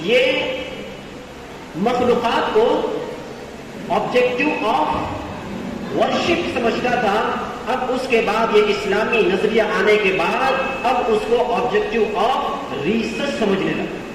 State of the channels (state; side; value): identical; both; correlation 1.00